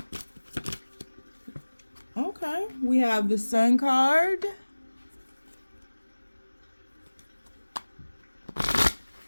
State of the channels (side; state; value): both; inverted; correlation -1.00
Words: Okay, we have the Sun card.